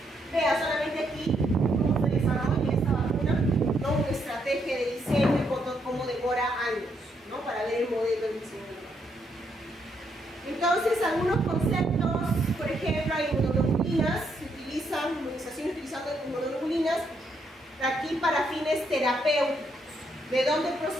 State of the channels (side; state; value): both; normal; correlation 0.76